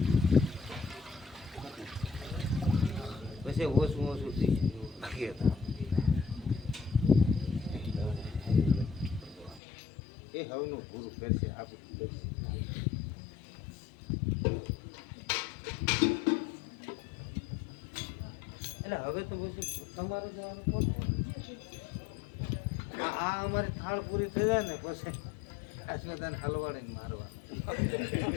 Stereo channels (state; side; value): drops out; right; at 9.6 s